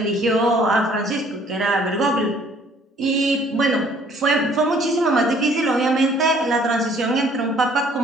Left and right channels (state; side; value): normal; both; correlation 0.59